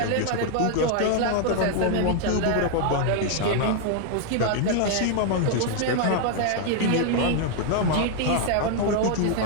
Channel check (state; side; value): different; both; correlation 0.00